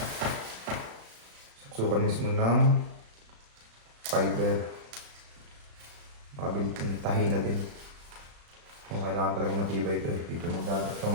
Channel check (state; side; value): late; left; 35 ms